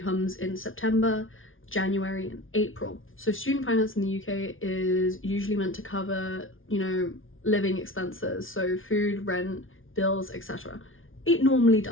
comes in September, January and April. So student finance in the UK is usually meant to cover, you know, living expenses, so food, rent, bills, etc. It normally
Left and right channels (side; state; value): right; late; 0.58 ms